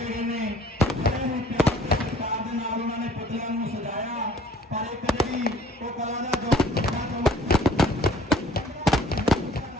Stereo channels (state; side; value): normal; both; correlation 0.54